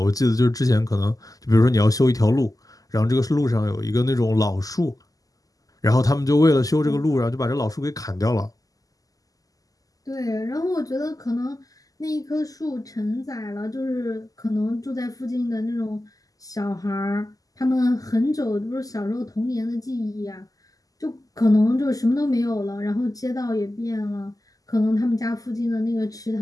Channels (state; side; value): late; right; 0.17 ms